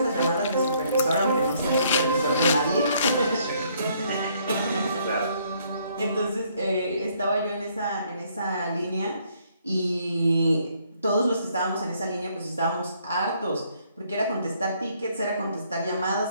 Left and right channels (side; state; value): both; inverted; correlation -0.67